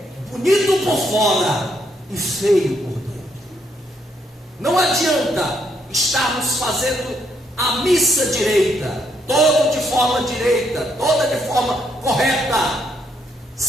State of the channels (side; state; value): both; normal; correlation 0.74